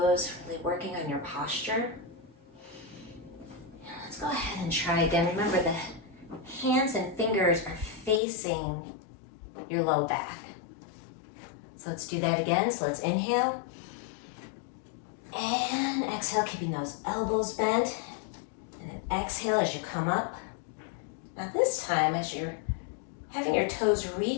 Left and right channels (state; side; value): drops out; right; at 8.2 s